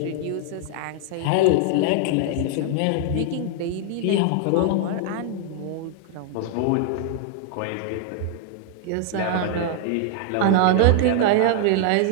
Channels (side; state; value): both; different; correlation 0.00